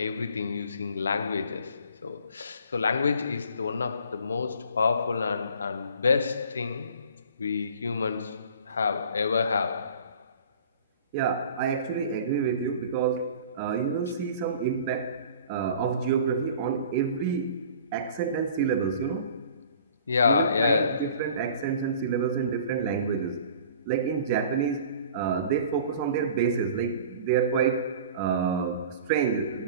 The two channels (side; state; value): both; inverted; correlation -0.46